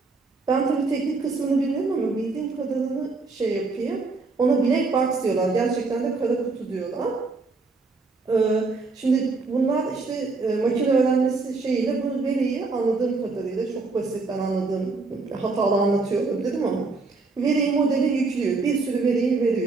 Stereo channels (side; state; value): left; quieter; 3.9 dB